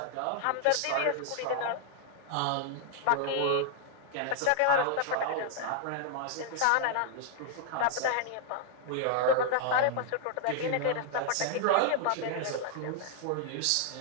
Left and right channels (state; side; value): different; both; correlation 0.00